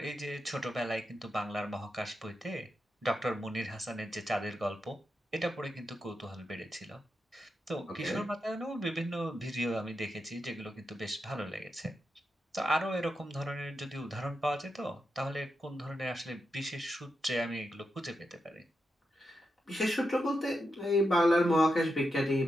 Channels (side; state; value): both; normal; correlation 0.86